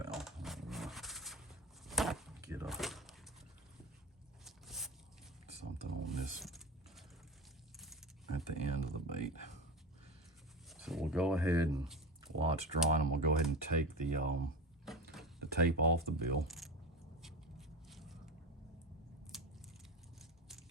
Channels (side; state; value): both; normal; correlation 0.24